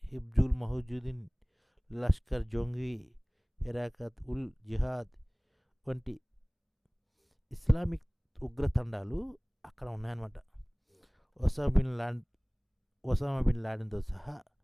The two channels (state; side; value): identical; both; correlation 1.00